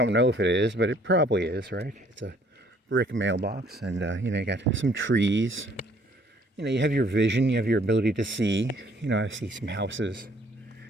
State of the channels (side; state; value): both; normal; correlation 0.61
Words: know if it is, but it probably is, right? It's a brick mailbox, and you know, you got some trees. You know, you have your vision, you have your ability to see. You know, I see some houses.